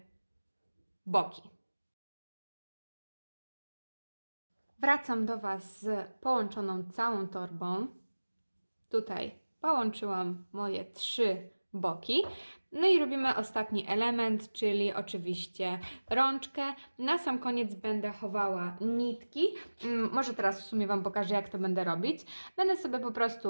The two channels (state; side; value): inverted; both; correlation -1.00